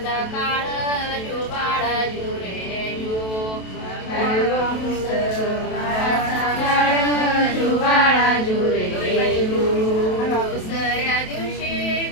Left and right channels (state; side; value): late; right; 27 ms